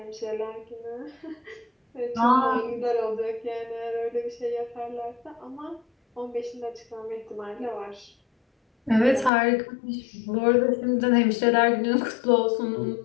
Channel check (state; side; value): drops out; right; at 9.3 s